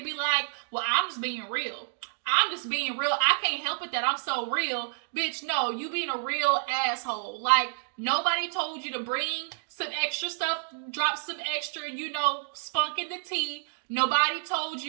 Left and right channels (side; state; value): left; silent; digital silence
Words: like, well, I'm just being real. I'm just being real. I can't help it that I'm so real. Bitch, no, you being a real asshole. Like, nobody told you to bring some extra stuff, drop some extra, spunk in the tea. Nobody told